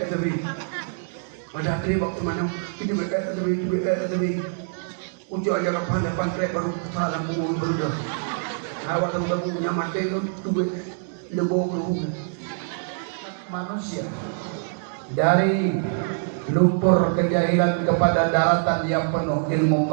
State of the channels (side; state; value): left; silent; digital silence